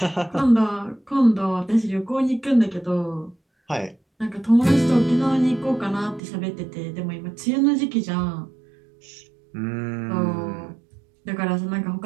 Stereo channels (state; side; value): drops out; left; at 6.2 s